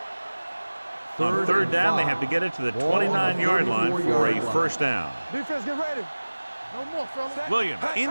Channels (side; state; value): both; inverted; correlation -1.00